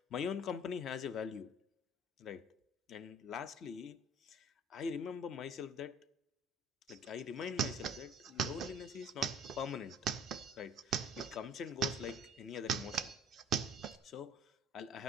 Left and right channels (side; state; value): both; normal; correlation 0.50